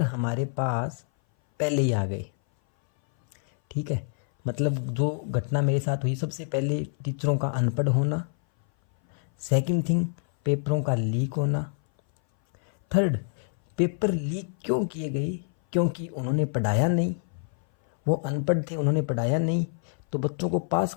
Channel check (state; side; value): silent; right; 58 dB below the other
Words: हमारे पास पहले ही आ गए। ठीक है, मतलब जो घटना मेरे साथ हुई, सबसे पहले टीचरों का अनपढ़ होना, सेकंड थिंग पेपरों का लीक होना, थर्ड पेपर लीक क्यों किए गए, क्योंकि उन्होंने पढ़ाया नहीं, वो अनपढ़ थे, उन्होंने पढ़ाया नहीं। तो बच्चों को पास